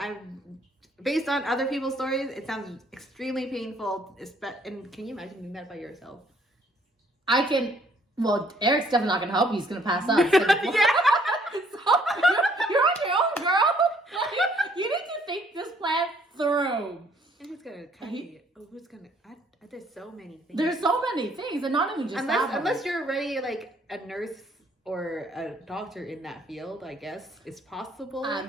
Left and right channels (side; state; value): both; normal; correlation 0.63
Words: based on other people's stories. It sounds extremely painful. And can you imagine doing that by yourself? I can. Well, Eric's definitely not gonna help you. He's gonna pass out. So, Yeah. you're on your own, girl. You need to think this plan through. And who's gonna cut you? Oh, who's gonna? There's so many things. There's so many things, and not even just that. Unless you're already like a nurse or a doctor in that field, I guess it's possible.